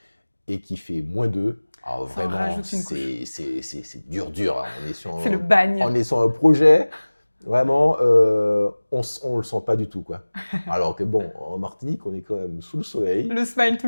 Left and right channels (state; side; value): inverted; both; correlation -1.00